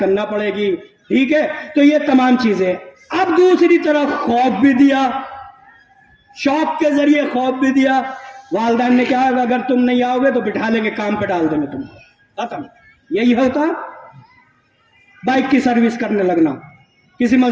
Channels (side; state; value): both; identical; correlation 1.00